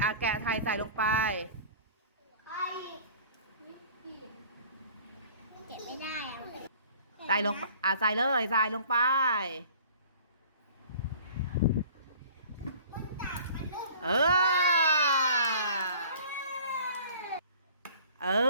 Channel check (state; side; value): inverted; both; correlation -0.48